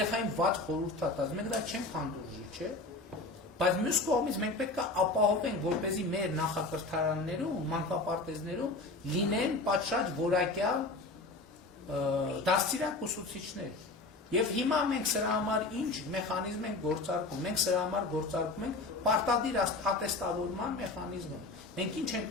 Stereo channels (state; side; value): quieter; right; 3.2 dB